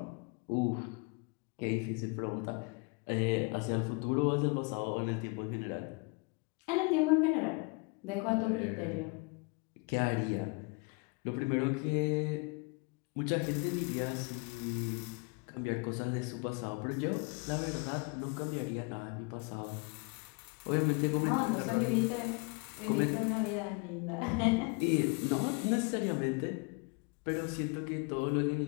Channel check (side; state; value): right; quieter; 30.5 dB